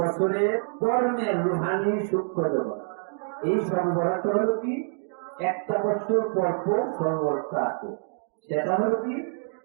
কর্মের রুহানি সূক্ষ্ম জগৎ। এই সর্বরাত হলো কি, একটা বছর পর পর সর্বরাতটা আছে। সেটা হলো কি,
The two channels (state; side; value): silent; left; digital silence